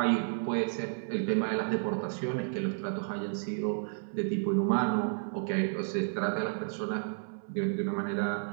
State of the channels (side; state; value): left; silent; 57 dB below the other